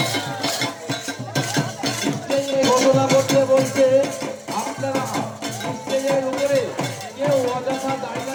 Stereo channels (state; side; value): identical; both; correlation 1.00